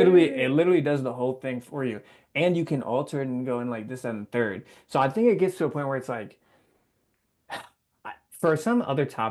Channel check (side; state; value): both; identical; correlation 1.00